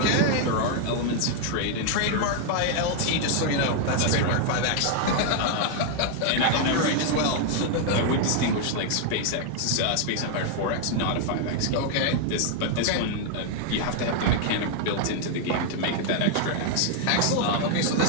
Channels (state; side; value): different; both; correlation 0.00